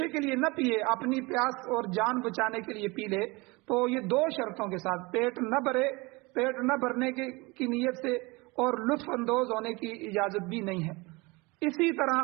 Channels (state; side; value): quieter; left; 25.0 dB